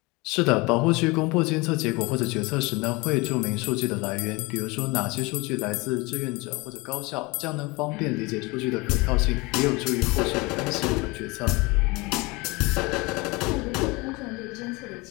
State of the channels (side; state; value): right; quieter; 25.0 dB